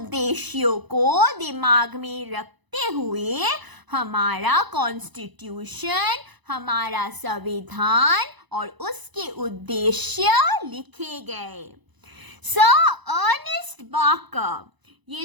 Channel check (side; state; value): left; late; 1.0 ms